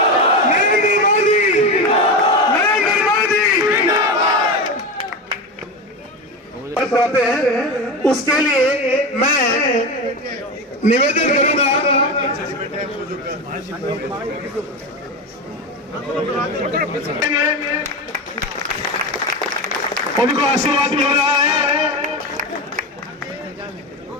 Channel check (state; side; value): normal; both; correlation 0.20